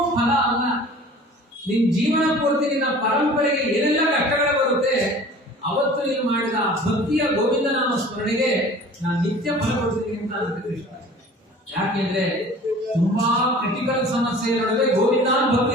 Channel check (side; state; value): both; normal; correlation 0.45